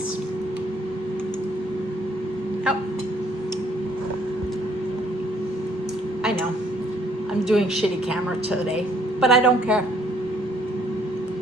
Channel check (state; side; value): normal; both; correlation 0.64